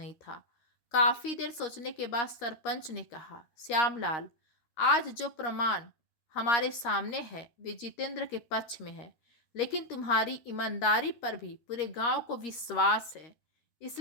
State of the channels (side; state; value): right; late; 13 ms